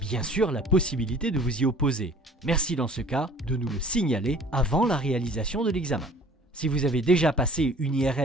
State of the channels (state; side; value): normal; both; correlation 0.51